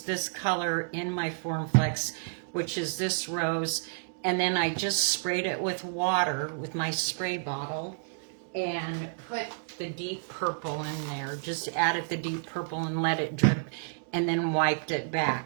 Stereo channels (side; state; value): left; silent; digital silence